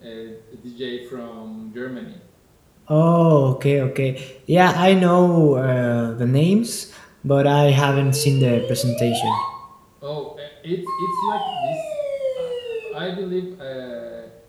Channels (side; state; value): both; identical; correlation 1.00